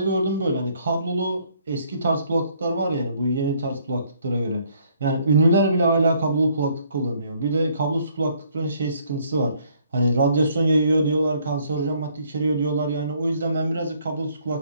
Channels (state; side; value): inverted; both; correlation -0.65